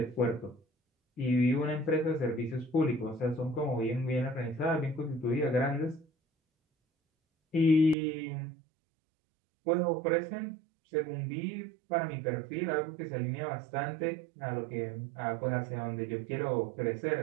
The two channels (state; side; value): drops out; left; at 8.0 s